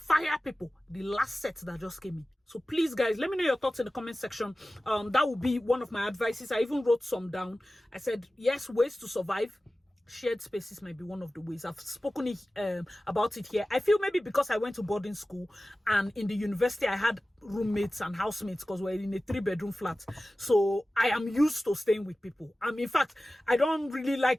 people, the last set that just came in. So please, guys, let me know your thoughts in the comment section. That would be one of my advices. I even wrote some down. I said, yes, ways to survive. Shared spaces might be one of the ways. I've spoken about it here. I feel maybe because I went to boarding school and in the university I had roommates and housemates because we're in a 3-bedroom flat. So I am used to staying with people. In fact, I don't really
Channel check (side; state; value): both; normal; correlation 0.96